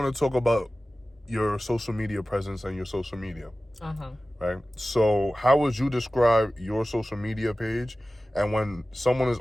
to talk about your social media presence and your social media. Uh-huh. Right? So, how would you describe your social media page? And when someone is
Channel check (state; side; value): normal; both; correlation 0.96